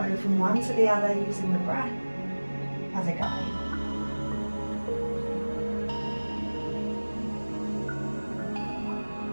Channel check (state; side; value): inverted; both; correlation -1.00